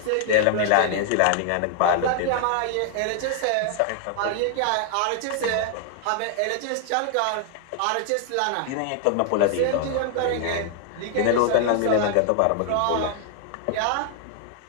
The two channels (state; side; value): different; both; correlation 0.00